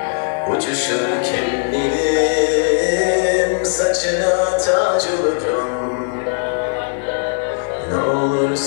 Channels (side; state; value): right; silent; digital silence